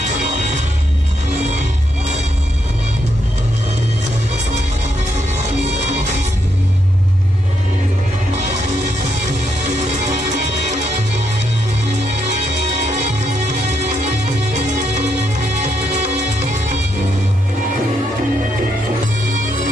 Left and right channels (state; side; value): normal; both; correlation 0.78